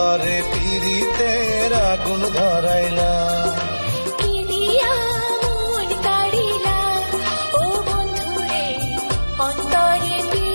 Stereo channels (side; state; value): both; inverted; correlation -1.00